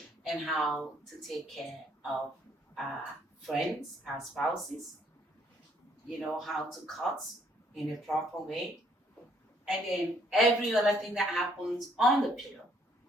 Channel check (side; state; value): both; normal; correlation 0.66